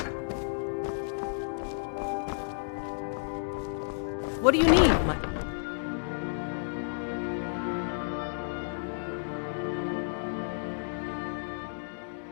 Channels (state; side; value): silent; right; digital silence